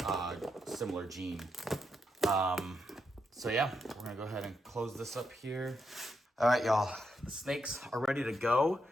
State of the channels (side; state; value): both; normal; correlation 0.82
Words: similar gene. So yeah, we're gonna go ahead and close this up here. All right, y'all, the snakes are ready to go.